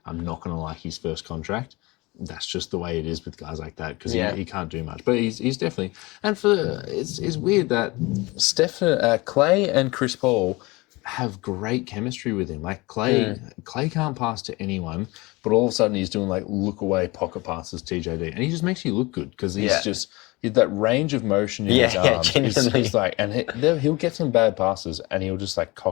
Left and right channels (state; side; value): quieter; right; 23.3 dB